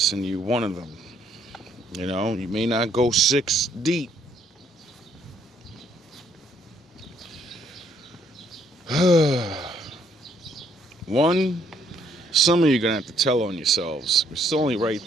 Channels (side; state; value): both; normal; correlation 0.68